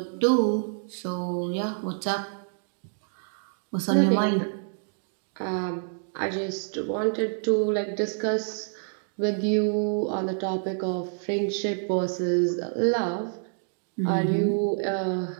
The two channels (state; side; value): silent; left; digital silence